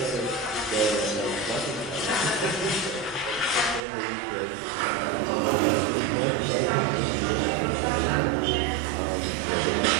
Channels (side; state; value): left; drops out; at 3.8 s